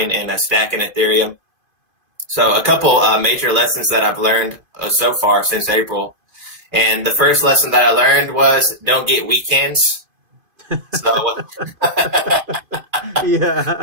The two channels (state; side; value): late; left; 2.5 ms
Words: and stacking Ethereum. So a couple major lessons that I've learned so far since April. And the first lesson that I learned was don't get weekends. So